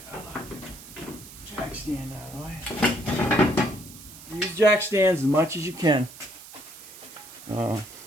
stand out of the way. Use jack stands as much as you can. All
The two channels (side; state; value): right; noise; hiss, 17 dB below the sound